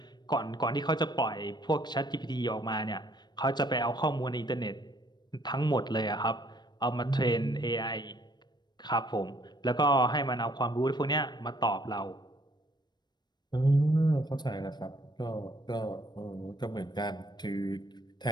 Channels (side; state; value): right; late; 0.21 ms